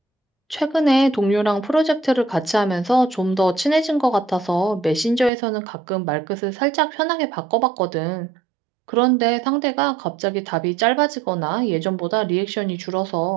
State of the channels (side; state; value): left; drops out; at 5.3 s